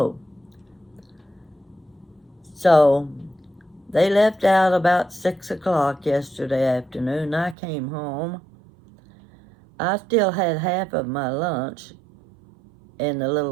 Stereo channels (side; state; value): left; drops out; at 7.6 s